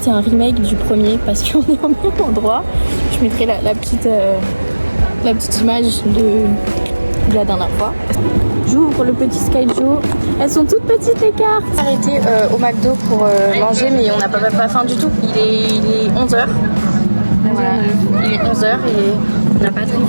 c'est un remake du premier parce qu'on est au même endroit. Je mettrai la petite image de la dernière fois. J'ouvre le petit Skyjo. Elles sont toutes petites les cartes. On s'est arrêté au McDo pour manger, mais on n'a pas faim du tout. Il est 11h. Voilà, il est 11h et on n'a pas très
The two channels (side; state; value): both; inverted; correlation -1.00